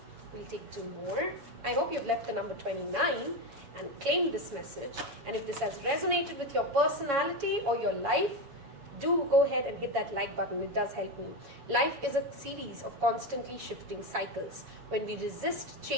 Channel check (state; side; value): late; left; 7.2 ms